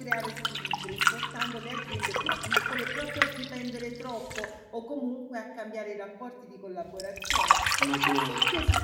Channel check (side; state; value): both; identical; correlation 1.00